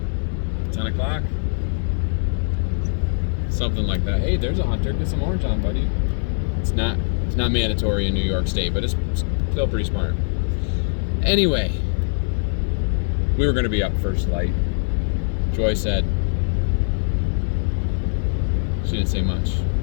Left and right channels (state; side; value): silent; right; digital silence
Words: 10 o'clock. Something like that. Hey, there's a hunter. Get some orange on, buddy. It's not mandatory in New York State, but it's still pretty smart. Anyway, we were going to be up first light. Joy said, she didn't say much.